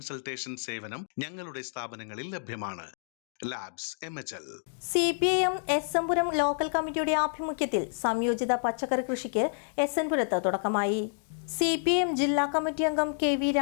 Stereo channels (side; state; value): right; silent; digital silence